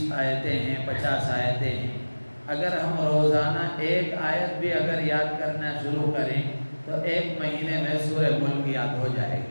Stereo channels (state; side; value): inverted; both; correlation -1.00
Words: آیتیں ہیں، 50 آیتیں ہیں۔ اگر ہم روزانہ ایک آیت بھی اگر یاد کرنا شروع کریں تو ایک مہینے میں سورہ ملک یاد ہو جائے